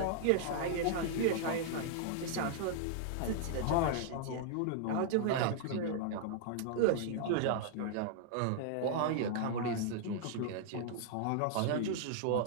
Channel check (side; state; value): both; different; correlation -0.01